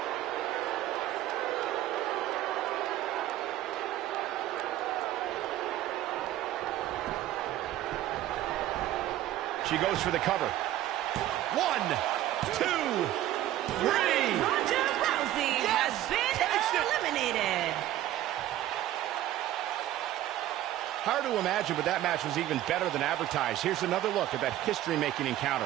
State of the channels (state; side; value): quieter; left; 13.6 dB